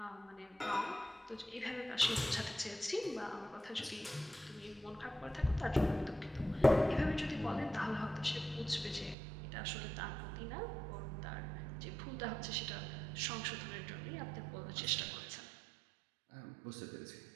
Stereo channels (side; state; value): left; drops out; at 9.2 s